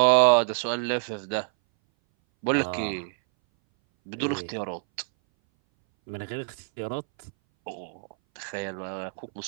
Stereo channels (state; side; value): silent; left; 59 dB below the other